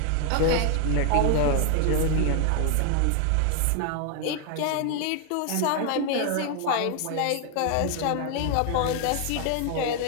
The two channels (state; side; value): different; both; correlation 0.00